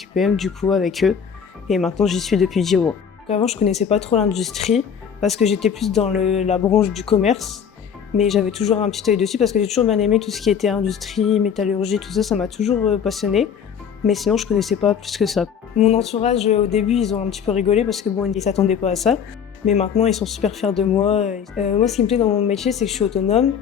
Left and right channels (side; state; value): right; quieter; 7.5 dB